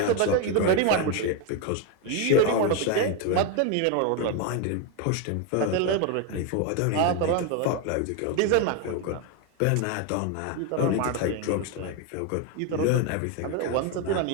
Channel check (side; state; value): both; different; correlation 0.02